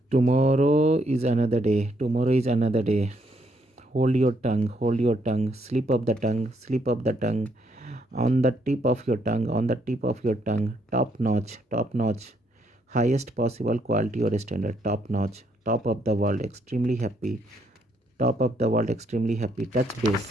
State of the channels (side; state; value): both; normal; correlation 0.72